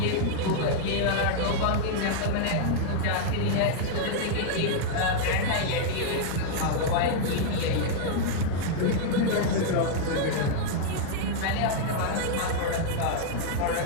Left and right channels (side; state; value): both; different; correlation -0.01